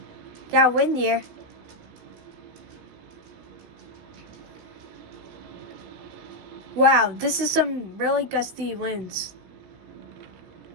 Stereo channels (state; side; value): late; left; 16 ms